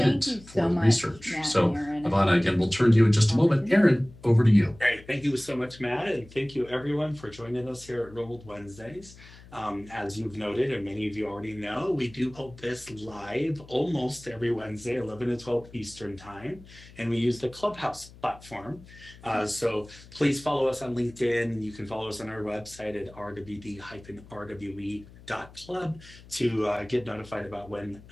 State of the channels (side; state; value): left; noise; hum, 21 dB below the sound